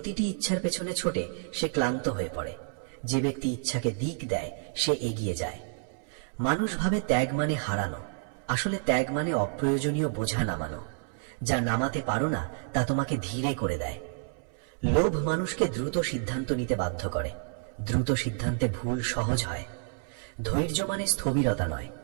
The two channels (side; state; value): left; silent; 58 dB below the other